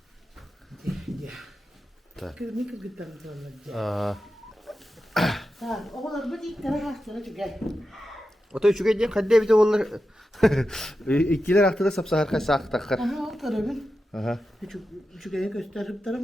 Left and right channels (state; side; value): normal; both; correlation 0.91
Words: Kırmızı kırgıtlarını zorlayacak. Aa, Ha, oğlan bu ilk tane hastana çıkar. oto şu gece kadde bir de onlar ikiler haftada sapsa harika sak takar. Aha, o tarafın. Aha. Şu gece gösterip